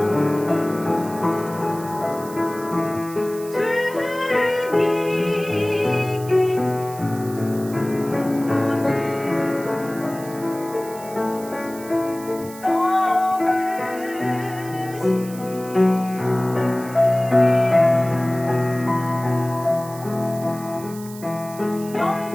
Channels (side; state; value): right; noise; hiss, 17 dB below the sound